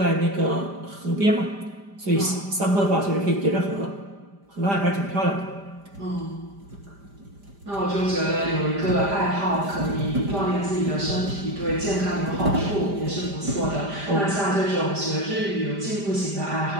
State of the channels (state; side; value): late; left; 5.0 ms